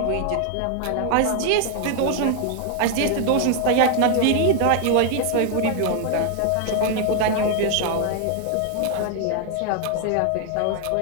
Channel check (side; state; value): both; different; correlation 0.00